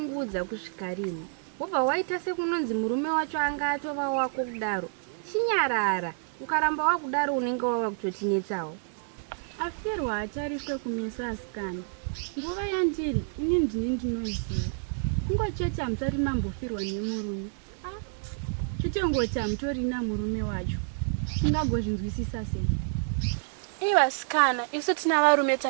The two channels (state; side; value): silent; left; digital silence